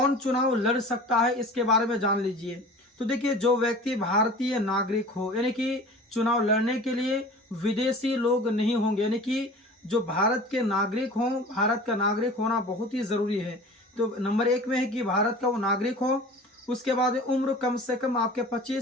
चुनाव लड़ सकता है इसके बारे में जान लीजिए। तो देखिए, जो व्यक्ति भारतीय नागरिक हो, यानी कि चुनाव लड़ने के लिए विदेशी लोग नहीं होंगे, यानी कि जो भारत के नागरिक हों, भारत का नागरिक होना बहुत ही जरूरी है। तो नंबर 1 में है कि भारत का वो नागरिक हो। उसके बाद उम्र कम से कम आपके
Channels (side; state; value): both; normal; correlation 0.41